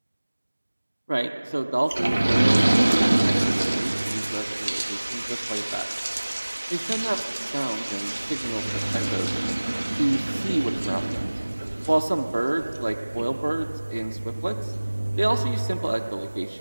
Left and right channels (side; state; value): both; inverted; correlation -1.00